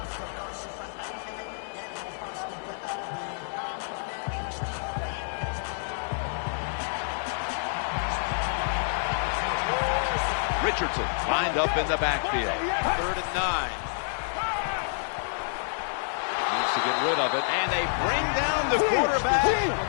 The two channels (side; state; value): right; silent; 59 dB below the other